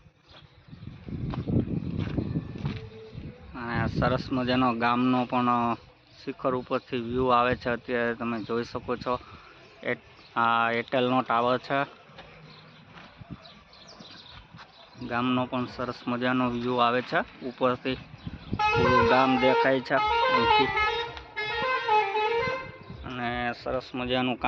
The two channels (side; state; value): both; identical; correlation 1.00